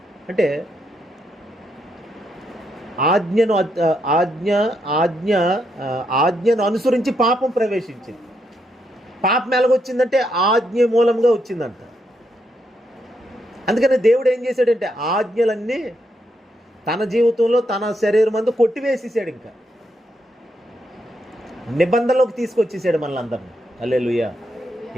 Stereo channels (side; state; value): both; normal; correlation 0.79